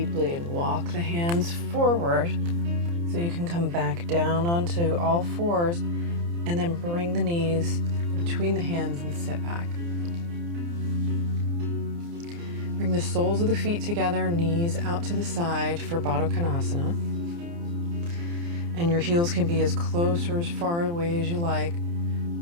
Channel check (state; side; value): late; left; 29 ms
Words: and walk the hands forward so you can come back down onto all fours and then bring the knees between the hands and sit back. Bring the soles of the feet together, knees out to the side for Baddha Konasana. And your heels can be as close or as far away as you like.